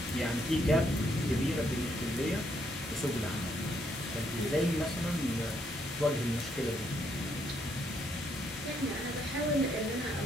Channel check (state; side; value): normal; both; correlation 0.73